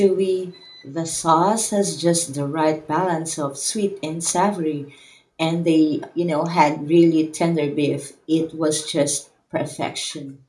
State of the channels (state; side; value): identical; both; correlation 1.00